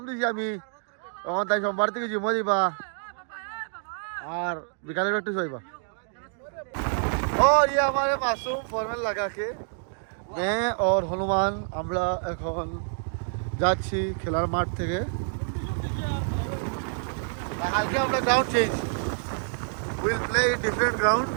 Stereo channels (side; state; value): left; silent; digital silence